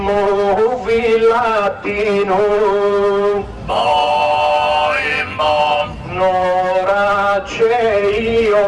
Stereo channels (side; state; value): both; identical; correlation 1.00